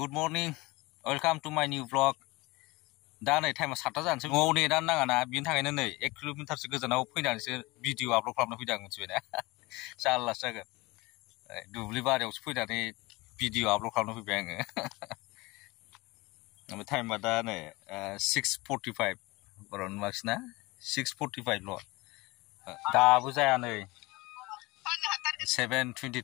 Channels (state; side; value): quieter; right; 22.8 dB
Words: morning. Welcome to my new vlog. दा नै टाइमा 7टा जानोसै न'आव नेटानो नाङा ना बिनि थाखायनो नै 1 किल'मिटारसो गोजानाव फैनानैसो भिडिअ आपल'ड खालामनो फैदों आं मिथिबायना जारलासो जागोन दुब्लि बारियावसो फैनानै भिडिअ आपल'ड खालामनो फैबाय आङो ओमफ्राय टाइमा दा नै 6:45 बर'नि मार्क्सना 6:45 ल' दाबो जाया नै